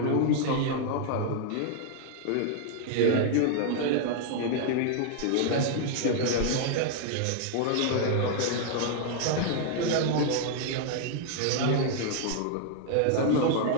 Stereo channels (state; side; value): different; both; correlation 0.00